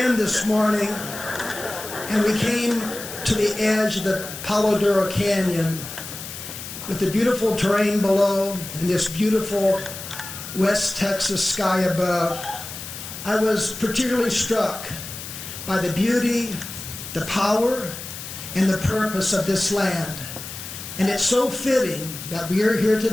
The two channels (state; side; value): noise; left; hiss, 10 dB below the sound